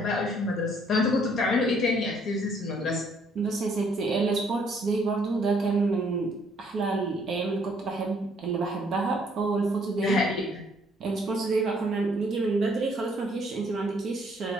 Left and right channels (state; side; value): normal; both; correlation 0.65